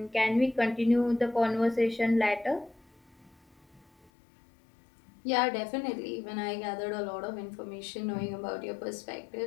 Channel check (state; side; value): drops out; right; at 4.1 s